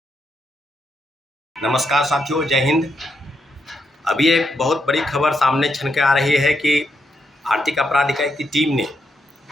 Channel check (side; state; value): both; normal; correlation 0.80